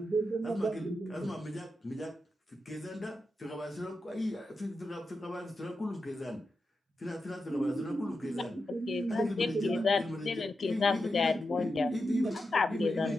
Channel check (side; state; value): both; normal; correlation 0.88